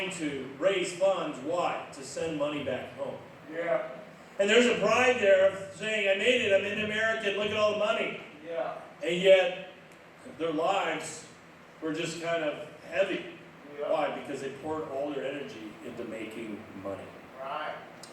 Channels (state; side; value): identical; both; correlation 1.00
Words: to raise funds. Why? To send money back home. Yeah. And there's a pride there of saying, "I made it, I'm in America, look at all the money." Yeah. And yet, their lives were just kind of heavy. Yeah. Why? Because they poured all their energy into making money. Right.